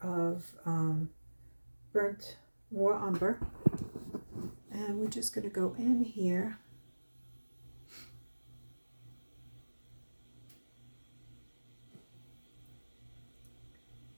of burnt raw umber, and we're just going to go in here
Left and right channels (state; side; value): inverted; both; correlation -1.00